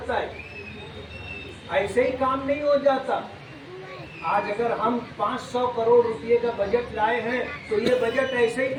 ہے، ایسے ہی کام نہیں ہو جاتا۔ آج اگر ہم 500 کروڑ روپے کا بجٹ لائے ہیں تو یہ بجٹ ایسے ہی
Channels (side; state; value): both; identical; correlation 1.00